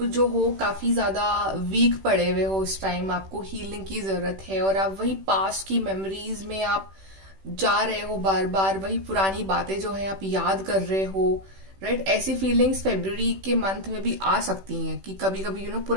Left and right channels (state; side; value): late; left; 16 ms